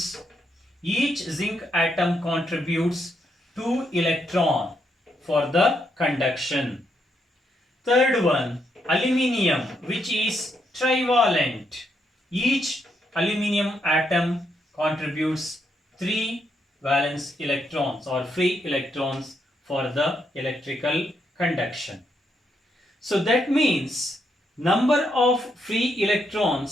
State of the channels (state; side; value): normal; both; correlation 0.78